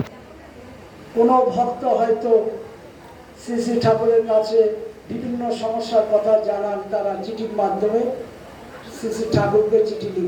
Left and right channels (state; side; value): identical; both; correlation 1.00